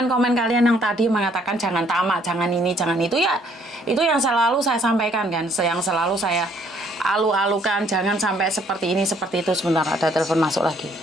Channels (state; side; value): normal; both; correlation 0.64